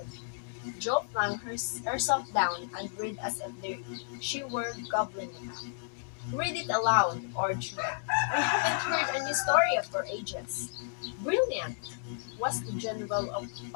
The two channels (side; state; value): right; silent; digital silence